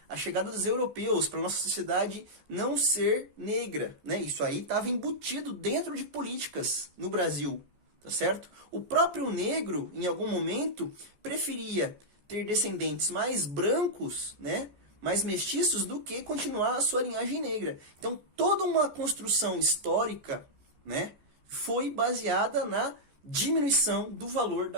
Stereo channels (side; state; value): left; late; 14 ms